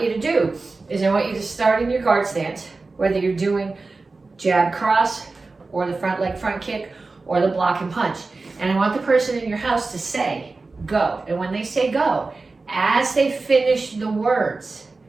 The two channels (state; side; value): quieter; left; 3.7 dB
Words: you to do is I want you to start in your guard stance, whether you're doing jab cross or the front leg front kick or the block and punch. And I want the person in your house to say, go. And when they say go, as they finish the words,